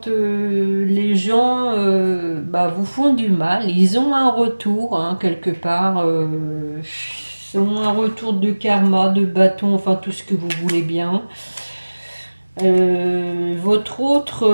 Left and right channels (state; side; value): inverted; both; correlation -1.00